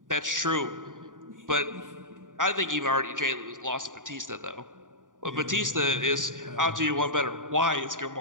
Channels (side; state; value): left; late; 0.88 ms